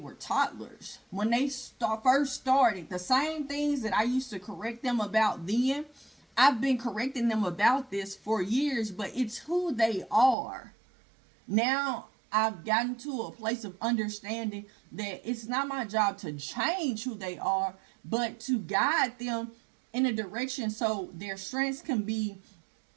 toddlers. When they first started. The same things that I used to correct them about then, I've been correcting them about this for years, but it's who they are. Now I've gotten to a place of understanding that it's not my job to change who they are, but to guide them in a direction so their strengths can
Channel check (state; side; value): drops out; left; at 10.4 s